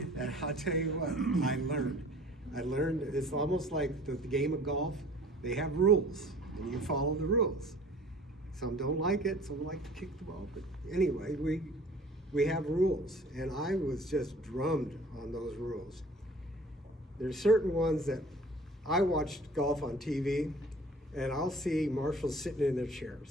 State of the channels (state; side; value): normal; both; correlation 0.48